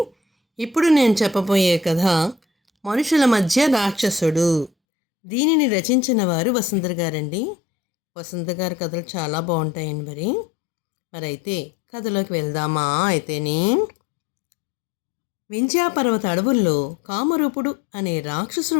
ఇప్పుడు నేను చెప్పబోయే కథ మనుషుల మధ్య రాక్షసుడు. దీనిని రచించిన వారు వసుంధర గారండి. వసుంధర గారి కథలు చాలా బాగుంటాయండి. మరైతే కథలోకి వెళ్దామా? అయితేనే వింధ్యాపర్వత అడవుల్లో కామరూపుడు అనే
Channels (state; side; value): drops out; right; at 4.7 s